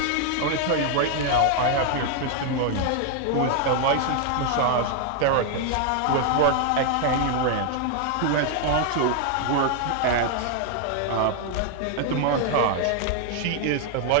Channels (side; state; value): both; different; correlation 0.00